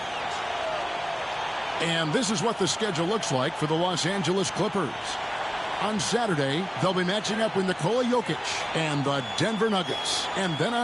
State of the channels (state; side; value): identical; both; correlation 1.00